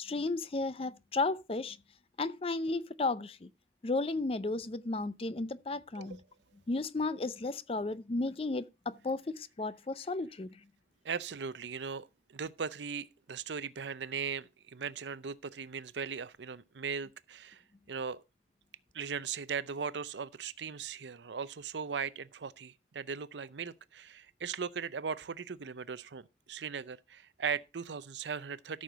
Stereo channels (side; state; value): both; normal; correlation 0.22